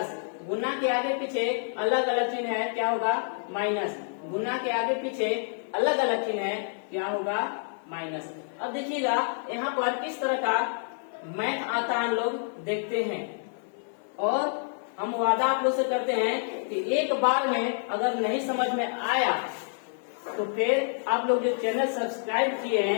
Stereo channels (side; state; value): right; silent; 59 dB below the other